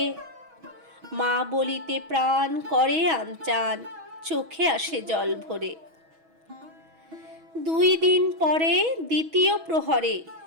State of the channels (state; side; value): late; left; 6.2 ms